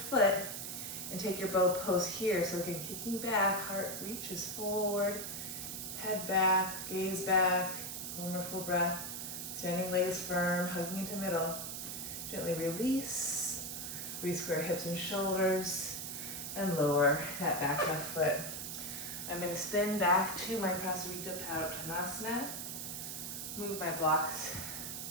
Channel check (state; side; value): noise; right; hiss, 6 dB below the sound